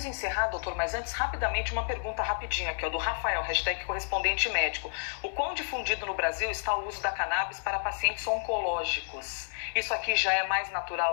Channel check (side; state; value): right; silent; 58 dB below the other